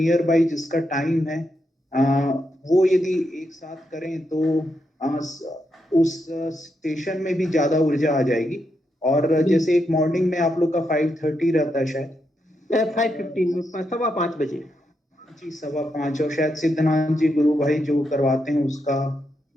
बाई जिसका टाइम है, अ, वो यदि एक साथ करें तो उस स्टेशन में भी ज्यादा ऊर्जा आ जाएगी। और जैसे एक मॉर्निंग में आप लोग का 5:30 रहता है शायद, 5:15 में, 5:15 जी 5:15, और शायद सिद्धनाथ जी गुरु भाई जो करवाते हैं उसका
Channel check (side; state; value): both; normal; correlation 0.82